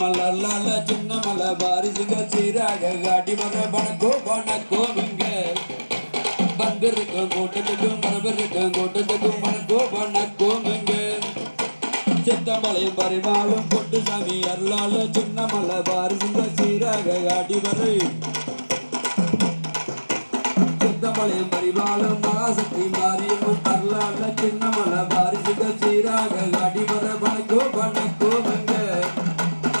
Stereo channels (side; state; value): both; inverted; correlation -1.00